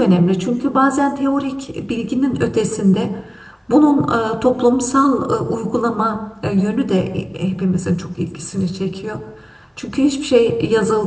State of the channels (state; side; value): identical; both; correlation 1.00